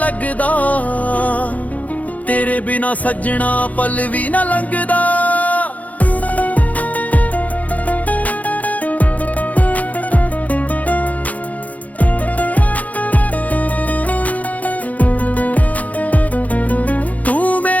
ਤੇਰੇ ਬਿਨਾ ਸੱਜਣਾ ਪਲ ਵੀ ਨਾ ਲੰਘਦਾ। ਤੂੰ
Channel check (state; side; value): late; right; 0.074 ms